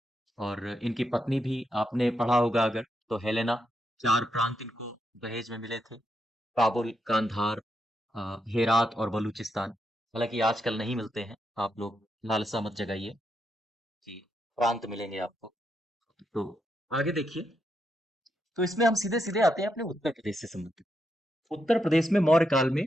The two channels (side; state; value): both; normal; correlation 0.82